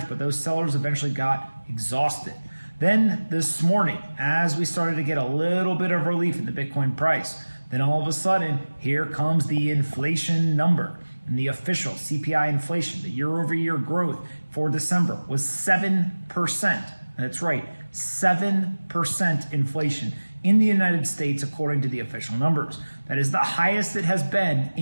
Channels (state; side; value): inverted; both; correlation -1.00